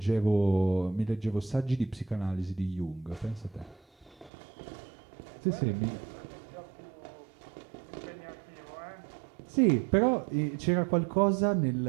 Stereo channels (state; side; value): drops out; left; at 4.3 s